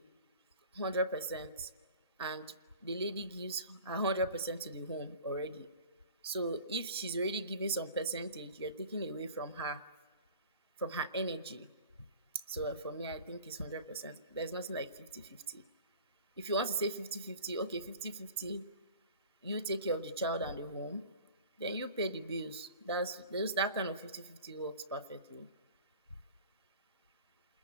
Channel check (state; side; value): inverted; both; correlation -0.42